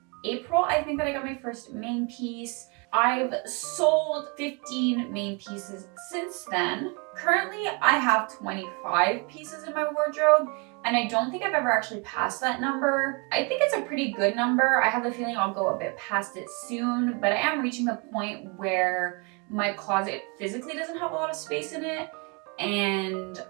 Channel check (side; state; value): left; quieter; 32.5 dB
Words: April, I think, that I got my first main piece. I've sold 15 main pieces since then. Currently, I have 25 pieces in my wardrobe, and I don't think I've ever actually passed that number. I think it's a pretty good number. I have a feeling I'll go a bit past it soon, but I am reaching the point where my closet physically doesn't have a lot of space in it. And